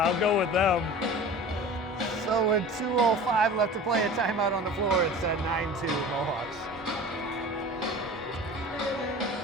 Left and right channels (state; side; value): normal; both; correlation 0.38